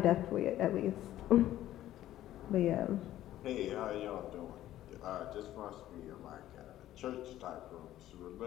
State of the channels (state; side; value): quieter; right; 13.4 dB